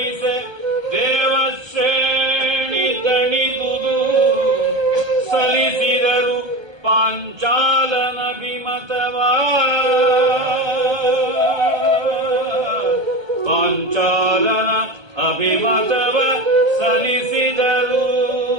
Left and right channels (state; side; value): late; left; 1.3 ms